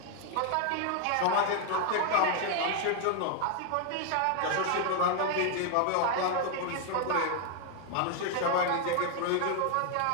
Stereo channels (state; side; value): different; both; correlation 0.00